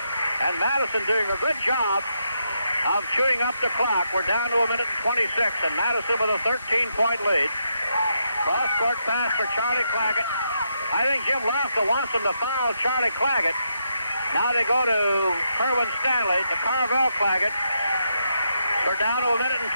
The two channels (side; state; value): both; inverted; correlation -0.80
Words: And Madison doing a good job of chewing up the clock. We're down to a minute and 26, and Madison with a 13-point lead. Cross-court pass for Charlie Claggett. I think Jim Lassell wants them to foul Charlie Claggett. Now they go to Kerwin Stanley, to Carvel Claggett. We're down to a minute and